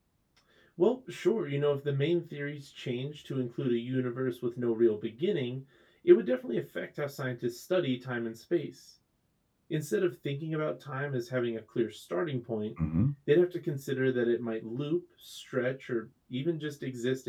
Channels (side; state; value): both; identical; correlation 1.00